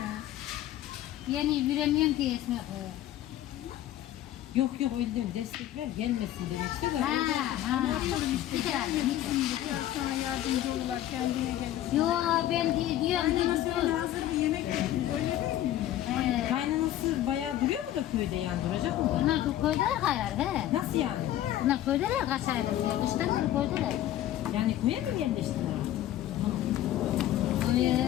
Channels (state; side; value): quieter; right; 13.0 dB